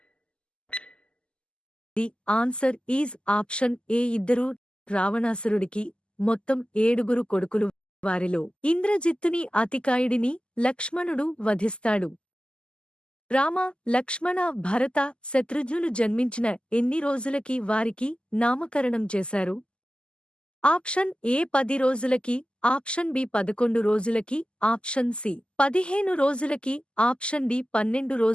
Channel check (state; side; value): late; right; 0.050 ms